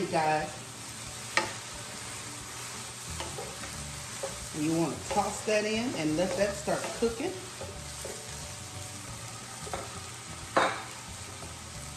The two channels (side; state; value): both; identical; correlation 1.00